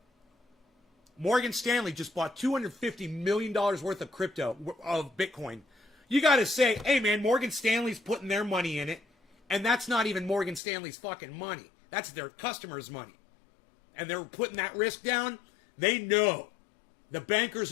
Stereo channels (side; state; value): right; drops out; at 10.6 s